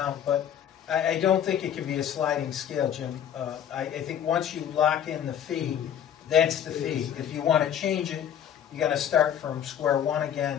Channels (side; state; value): right; quieter; 9.4 dB